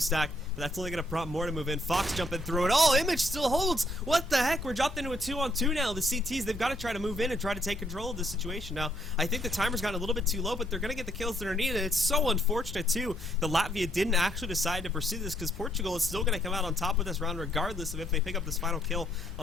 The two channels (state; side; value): normal; both; correlation 0.71